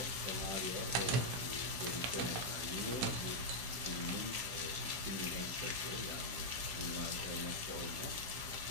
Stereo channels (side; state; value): left; late; 16 ms